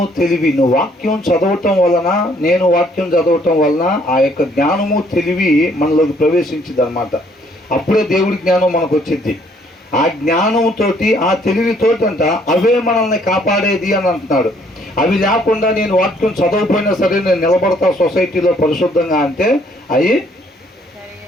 తెలివి. నువ్వు వాక్యం చదవటం వలన, నేను వాక్యం చదవటం వలన ఆ యొక్క జ్ఞానము తెలివి మనలోకి ప్రవేశించింది అనమాట. అప్పుడే దేవుడి జ్ఞానం మనకు వచ్చింది. ఆ జ్ఞానంతోటి, ఆ తెలివితోటి అంట అవే మనల్ని కాపాడేది అని అంటున్నాడు. అవి లేకుండా నేను వాక్యం చదవకపోయినా సరే నేను నిలబడతా సొసైటీలో పరిశుద్ధంగా అంటే అవి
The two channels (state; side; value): normal; both; correlation 0.64